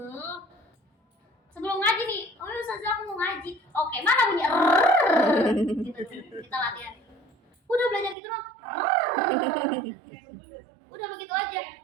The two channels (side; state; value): left; drops out; at 8.2 s